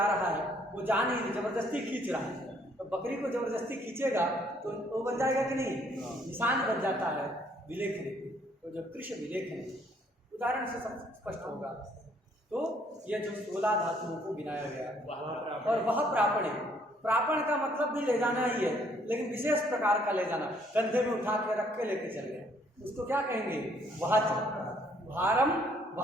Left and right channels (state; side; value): normal; both; correlation 0.65